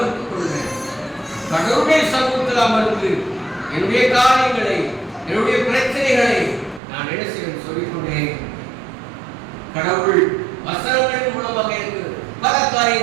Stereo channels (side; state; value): left; drops out; at 6.8 s